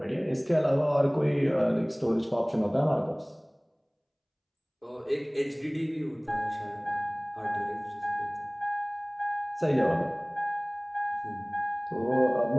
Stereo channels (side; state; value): both; identical; correlation 1.00